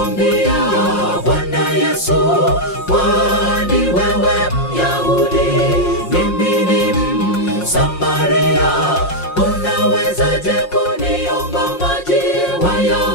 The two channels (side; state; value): right; late; 5.6 ms